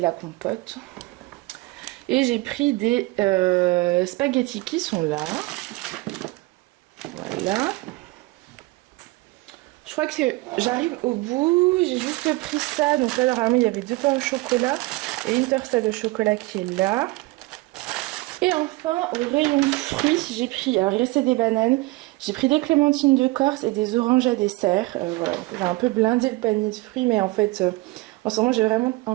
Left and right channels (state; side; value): quieter; left; 21.6 dB